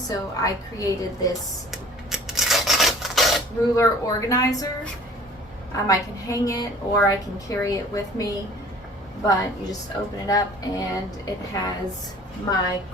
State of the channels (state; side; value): normal; both; correlation 0.49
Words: I created this ruler organizer. I can hang it or I can carry it with me, but you just open it up and it has my